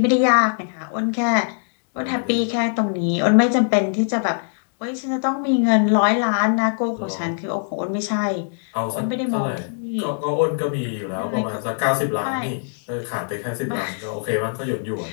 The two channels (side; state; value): right; silent; 64 dB below the other